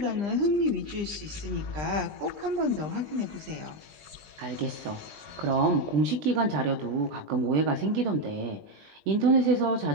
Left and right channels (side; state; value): left; late; 20 ms